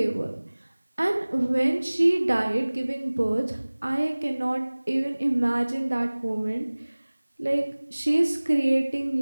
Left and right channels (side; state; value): both; inverted; correlation -1.00